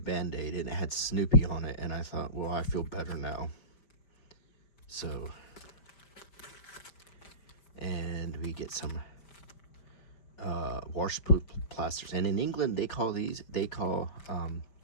and it had Snoopy on it, and I thought, well, I feel better now. So, and we get some washproof plasters, and in England they call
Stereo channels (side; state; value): right; late; 5.1 ms